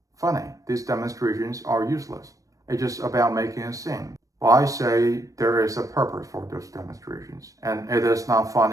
funny. These demonstrations are useless. It's just about making a scene. Well, I say there is a purpose for those demonstrations, and it is not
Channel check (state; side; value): late; left; 0.16 ms